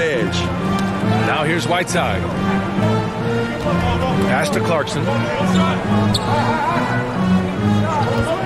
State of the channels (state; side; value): identical; both; correlation 1.00